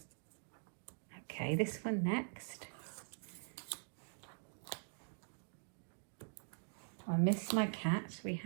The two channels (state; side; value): silent; left; digital silence